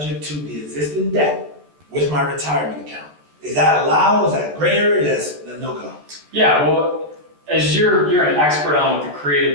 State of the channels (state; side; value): late; left; 14 ms